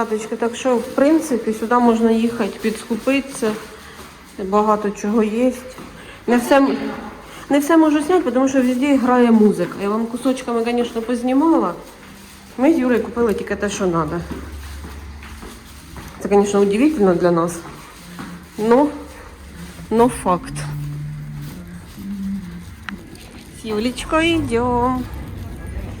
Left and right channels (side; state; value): both; identical; correlation 1.00